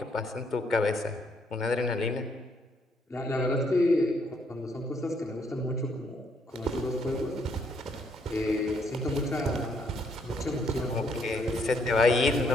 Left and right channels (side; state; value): both; normal; correlation 0.70